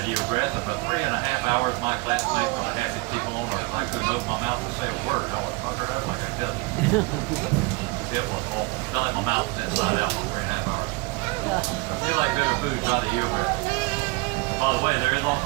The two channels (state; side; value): quieter; left; 26.1 dB